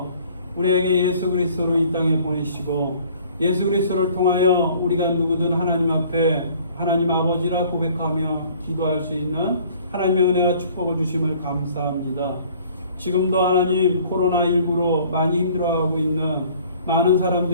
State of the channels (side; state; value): both; inverted; correlation -0.55